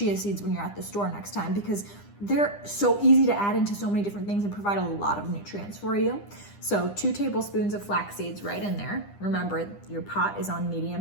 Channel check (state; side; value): late; right; 9.9 ms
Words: seeds when you're at the store next time, because they're so easy to add into so many different things and provide a lot of nutrients for you. So 2 tablespoons of flax seeds right in there. Remember, your pot is on